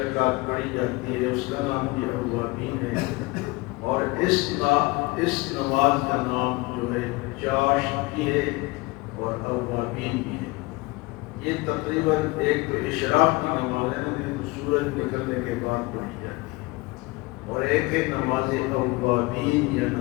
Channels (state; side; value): quieter; right; 23.6 dB